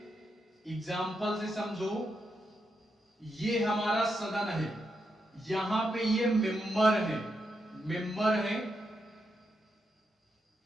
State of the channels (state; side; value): normal; both; correlation 0.83